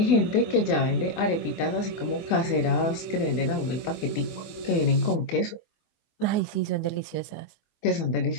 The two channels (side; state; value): right; late; 24 ms